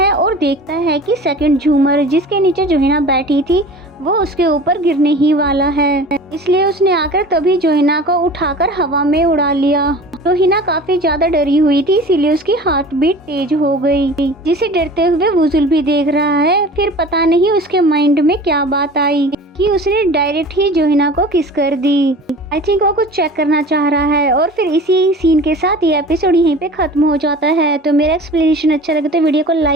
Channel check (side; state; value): both; normal; correlation 0.40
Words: और देखता है कि सेकंड झूमर, जिसके नीचे जोहिना बैठी थी, वो उसके ऊपर गिरने ही वाला है। इसलिए उसने आकर तभी जोहिना को उठाकर हवा में उड़ा लिया। जोहिना काफी ज्यादा डरी हुई थी, इसीलिए उसकी हार्ट बीट तेज हो गई, जिसे डरते हुए वुजुल भी देख रहा है। फिर पता नहीं उसके माइंड में क्या बात आई कि उसने डायरेक्ट ही जोहिना को किस कर दी। आई थिंक वो कुछ चेक करना चाह रहा है। और फिर इसी सीन के साथ ये एपिसोड यहीं पे खत्म हो जाता है। तो मेरा एक्सप्लेनेशन अच्छा लगे तो वीडियो को